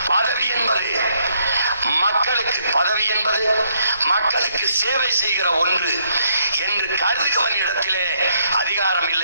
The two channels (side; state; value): both; inverted; correlation -0.72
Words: பதவி என்பது மக்களுக்கு, பதவி என்பது மக்களுக்கு சேவை செய்கிற ஒன்று என்று கருதுகிறவனிடத்திலே அதிகாரம்